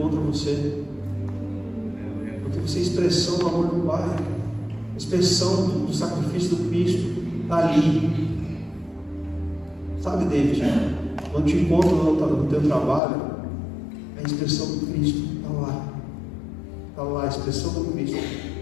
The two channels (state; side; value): drops out; right; at 13.0 s